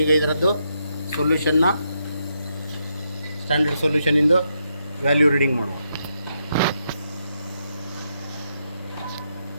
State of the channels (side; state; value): both; inverted; correlation -0.81